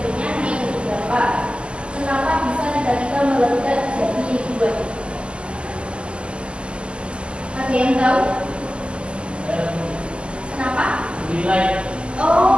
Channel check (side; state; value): left; late; 0.052 ms